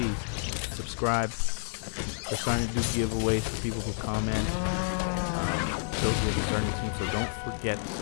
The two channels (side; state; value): right; silent; digital silence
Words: subscribe. We're starting to do giveaways for people who comment. Those will be starting soon, so don't forget to